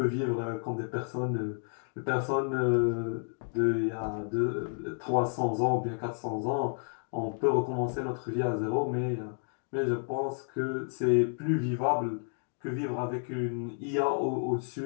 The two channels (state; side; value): silent; right; 57 dB below the other